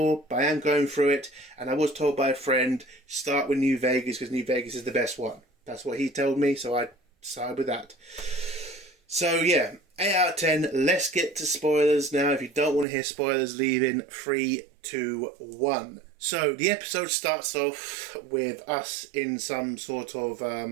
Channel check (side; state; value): left; drops out; at 12.9 s